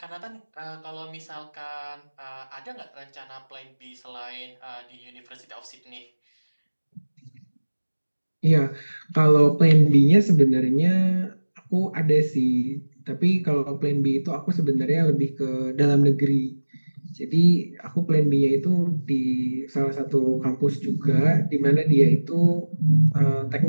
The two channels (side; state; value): both; inverted; correlation -1.00